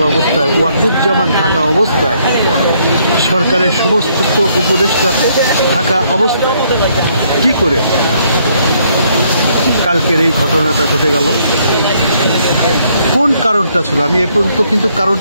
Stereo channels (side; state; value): both; inverted; correlation -0.69